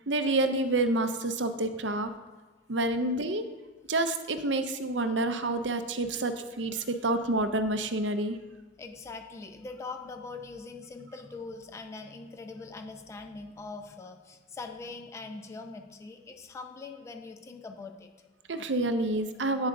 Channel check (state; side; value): normal; both; correlation 0.12